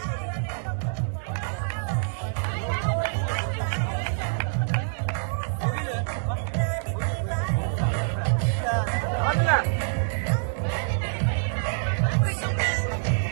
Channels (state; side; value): silent; left; digital silence